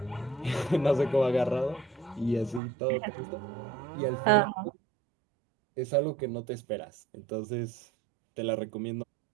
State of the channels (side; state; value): left; drops out; at 2.6 s